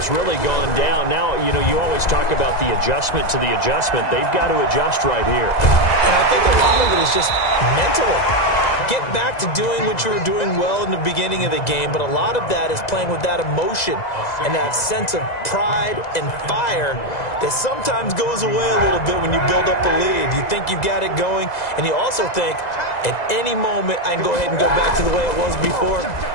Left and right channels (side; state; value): right; late; 2.0 ms